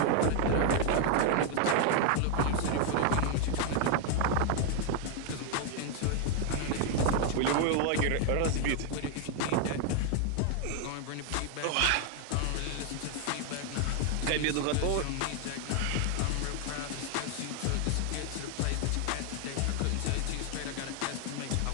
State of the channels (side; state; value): both; different; correlation 0.00